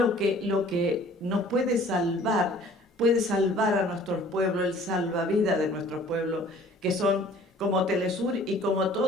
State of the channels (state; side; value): normal; both; correlation 0.52